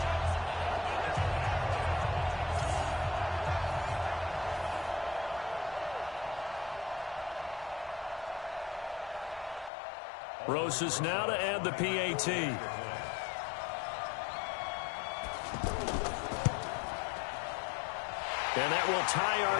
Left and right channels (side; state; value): right; drops out; at 9.7 s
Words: Rosas now to add the PAT. And that will tie